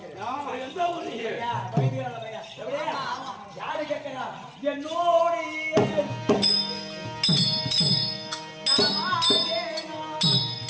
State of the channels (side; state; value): both; identical; correlation 1.00